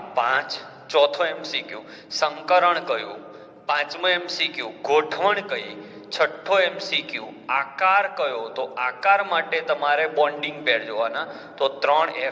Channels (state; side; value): identical; both; correlation 1.00